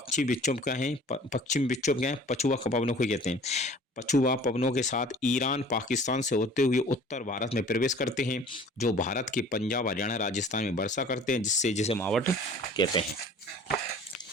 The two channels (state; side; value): normal; both; correlation 0.47